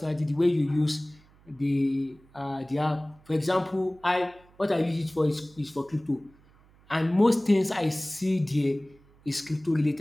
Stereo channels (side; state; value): right; noise; hum, 29 dB below the sound